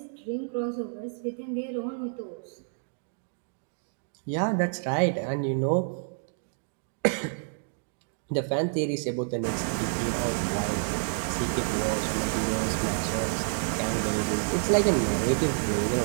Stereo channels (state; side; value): silent; left; digital silence